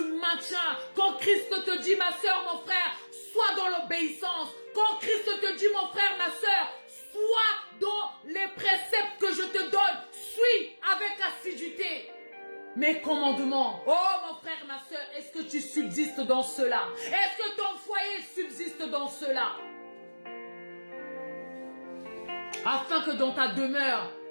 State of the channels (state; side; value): inverted; both; correlation -1.00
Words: maintiens quand Christ te dit, ma soeur, mon frère, sois dans l'obéissance. Quand Christ te dit, mon frère, ma soeur, sois dans les préceptes que je te donne. Suis avec assiduité mes commandements. Oh, mon frère, ma soeur, est-ce que tu subsistes dans cela? Est-ce que ton foyer subsiste dans cela? Afin que dans ta demeure,